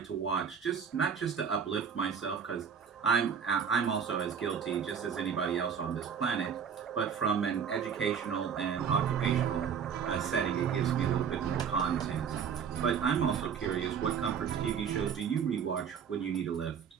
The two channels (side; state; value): left; quieter; 7.2 dB